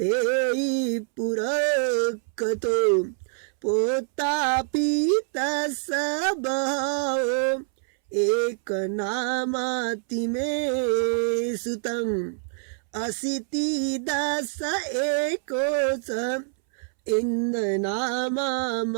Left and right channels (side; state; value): left; silent; 61 dB below the other